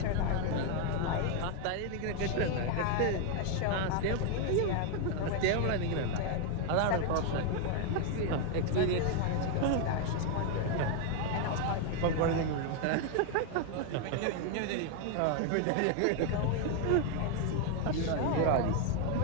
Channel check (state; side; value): different; both; correlation 0.01